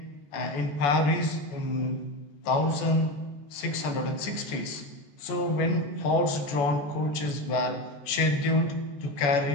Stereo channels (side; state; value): right; late; 14 ms